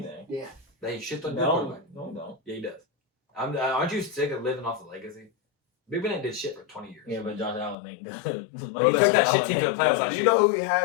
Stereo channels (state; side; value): drops out; right; at 7.8 s